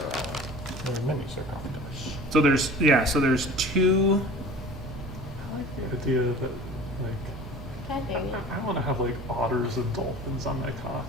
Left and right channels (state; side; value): normal; both; correlation 0.41